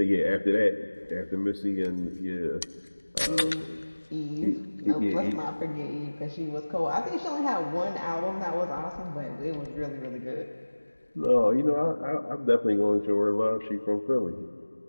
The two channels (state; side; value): inverted; both; correlation -1.00